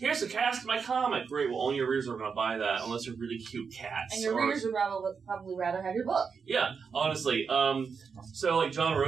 the cast of my comic. Great, well, only your readers are going to buy that unless they're really cute cats. And your readers would probably rather have your book. Yeah, honestly. So, John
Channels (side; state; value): left; quieter; 5.8 dB